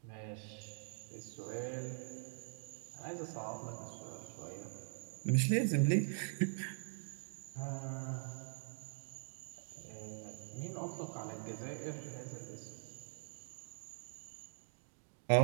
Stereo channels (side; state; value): left; silent; digital silence